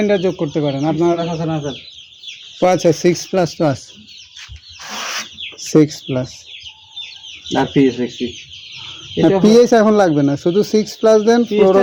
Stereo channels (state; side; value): identical; both; correlation 1.00